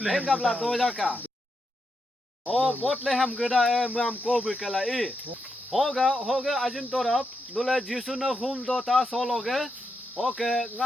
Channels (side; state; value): both; normal; correlation 0.84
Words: engapla dojaka o botle ham geda e mam ko be kala i hoga ajin torap nule jisu na hum do ta sologe oke